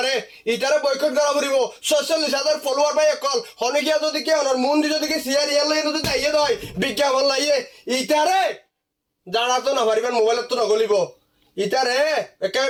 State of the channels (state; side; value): identical; both; correlation 1.00